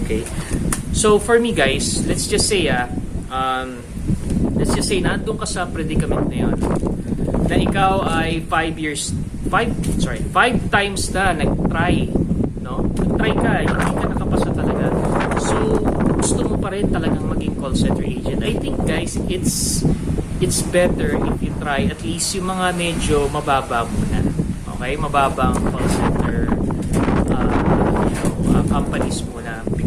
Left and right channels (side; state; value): both; identical; correlation 1.00